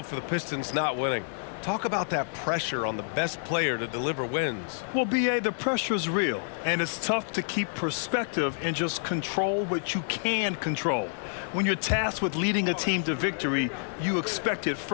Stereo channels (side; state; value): right; silent; digital silence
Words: for the Pistons not winning. Talk about that pressure on the best player to deliver wins. Well, B.A., the pressure is real, and it's tough to keep perspective and just control what you can control. When you're tasked with leading a team to victory, you expect it